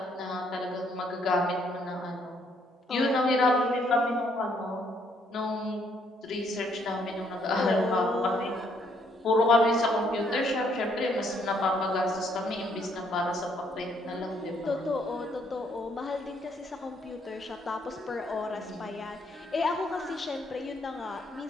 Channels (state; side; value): normal; both; correlation 0.69